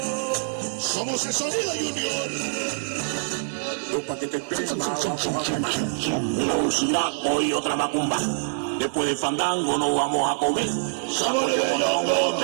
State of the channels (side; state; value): left; silent; digital silence